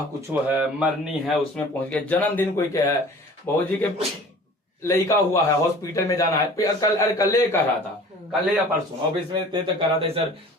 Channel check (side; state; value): both; normal; correlation 0.45